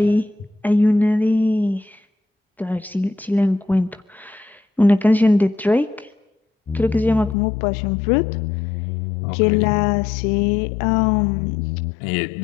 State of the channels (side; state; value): right; drops out; at 7.4 s